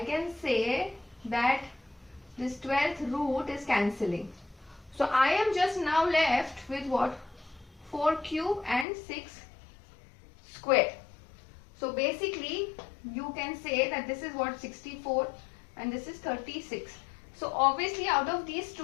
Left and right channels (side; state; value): right; drops out; at 8.8 s